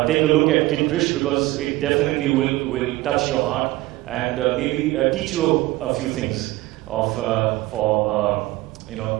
take a look at Kid Krish because it definitely will touch your heart and maybe teach you a few things of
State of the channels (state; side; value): quieter; left; 18.7 dB